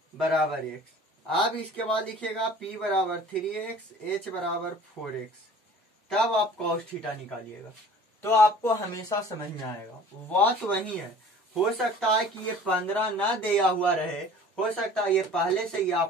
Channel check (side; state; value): both; normal; correlation 0.47